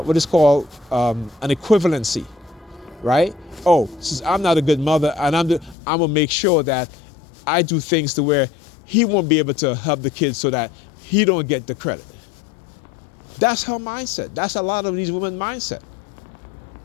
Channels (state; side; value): drops out; right; at 5.8 s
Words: is called an equivalency, right? Oh, since I'm not a good mother, and I'm gonna make sure that I do things to where he won't be able to help the kids so that he don't get the credit. That's her mindset. That's a lot of these women's mindset.